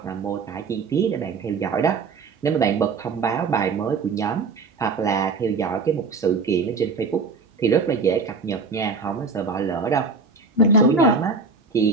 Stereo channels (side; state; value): left; quieter; 4.4 dB